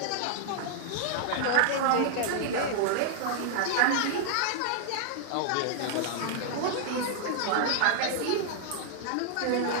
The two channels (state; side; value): different; both; correlation -0.01